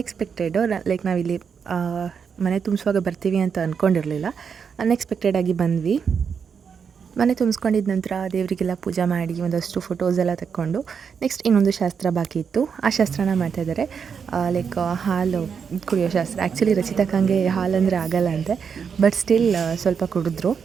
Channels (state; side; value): quieter; left; 6.5 dB